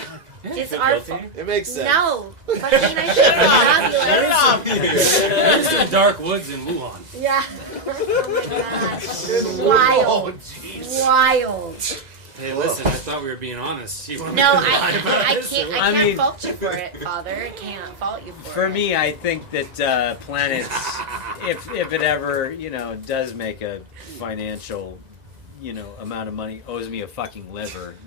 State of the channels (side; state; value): left; late; 2.0 ms